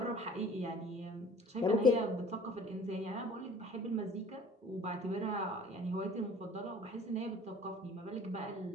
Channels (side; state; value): both; normal; correlation 0.49